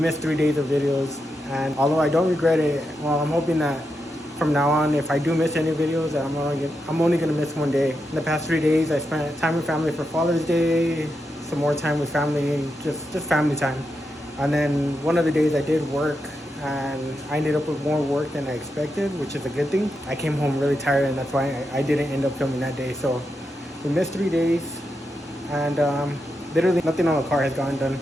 3 days of videos, and although I don't regret it, well, I'm hoping that from now on, if I do miss any videos, that I'm only gonna miss one day. In the past 3 days, I spent time with family for Father's Day, some more time with family, and just family time. And then one of the days I did work, and I ended up with more work than I expected, which is a good thing. I came home really tired, and that's why I didn't end up filming that day. So we missed 3 days, and literally nothing on the car has gotten done.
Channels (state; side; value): normal; both; correlation 0.86